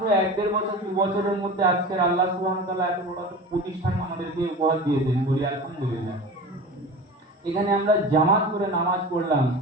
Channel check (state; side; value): normal; both; correlation 0.33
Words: 1-1.5 বছর 2 বছরের মধ্যে আজকের আল্লাহ সুবহানাহু ওয়া তাআলা এত বড় একটা প্রতিষ্ঠান আমাদেরকে উপহার দিয়েছেন, বলি আলহামদুলিল্লাহ। এখানে আমরা জামাত করে নামাজ পড়লাম